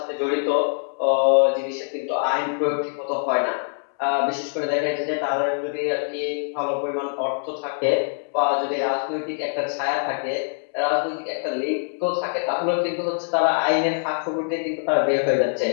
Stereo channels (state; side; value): silent; right; 63 dB below the other